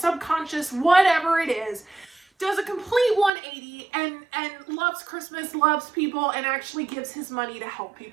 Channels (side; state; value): left; drops out; at 3.3 s